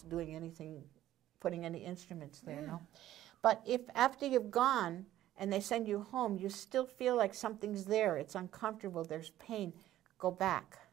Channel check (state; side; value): quieter; left; 13.4 dB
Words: doing anything, putting any instruments there, no? But if after you've gone and they send you home, you still feel like something's there, it's uncomfortable, there's pain, go back.